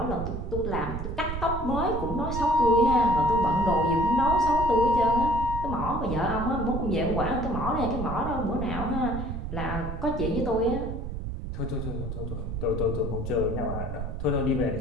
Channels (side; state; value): right; noise; rumble, 5 dB below the sound